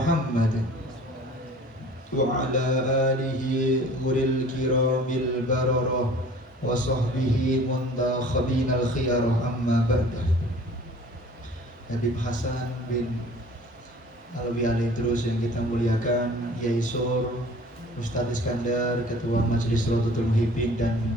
وعلى آله غر الكرام البررة وصحبه منتخبين الخيار. أما بعد. Habib Hasan bin Alwi Alidrus yang kita muliakan, Yai Sur, Ustadz Iskandar, Ketua Majelis Rodatul Muhibbin, dan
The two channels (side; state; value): both; normal; correlation 0.48